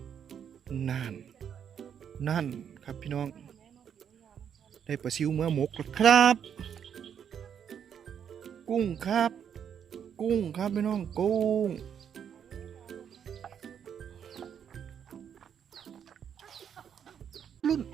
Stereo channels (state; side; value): quieter; left; 8.3 dB